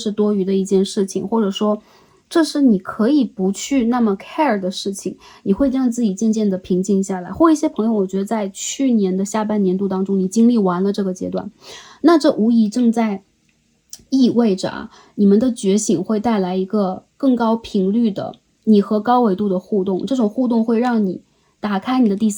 多余的一件事情，或者说这是你可以不去那么 care 的事情，你会让自己渐渐的平静下来。或一些朋友，我觉得在去年的下半年度当中，你经历完了这个阶段，那这无疑正在意味着你们的觉醒会带来一个更高频率的你和高维度的互动，这种互动会让你打开你的第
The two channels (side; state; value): both; identical; correlation 1.00